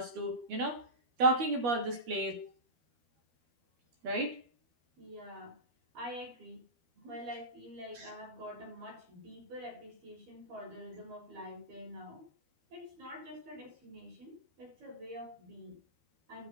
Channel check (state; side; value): late; left; 12 ms